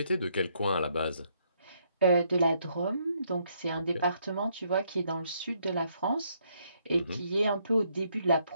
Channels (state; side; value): inverted; both; correlation -0.72